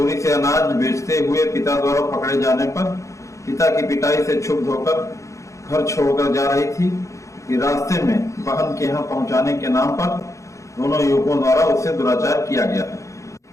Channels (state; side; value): late; right; 0.15 ms